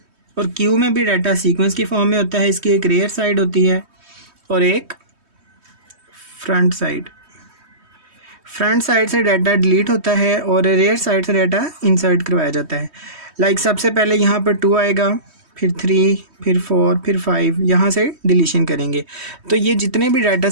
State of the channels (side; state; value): left; late; 3.2 ms